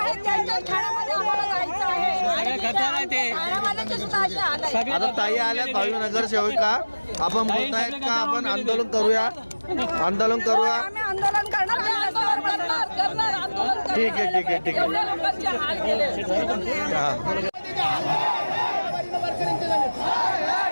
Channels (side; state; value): both; inverted; correlation -1.00